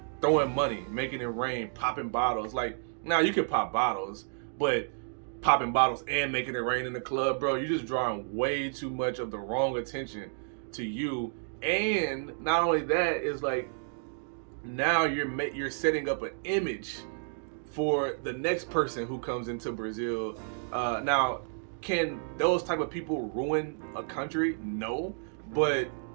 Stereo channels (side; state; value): left; silent; digital silence